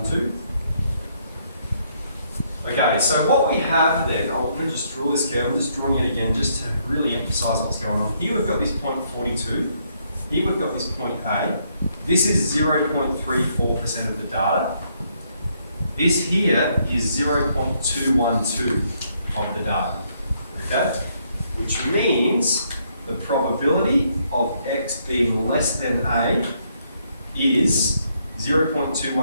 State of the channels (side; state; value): both; inverted; correlation -0.72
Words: Okay, so what we have then, I'm going to just draw this curve, I'm just drawing it again just to really emphasise what's going on. Here we've got this point 42, here we've got this point A. This is 0.34% of the data. This here is 0.212 of the data, okay? Which means the probability of x being less than A is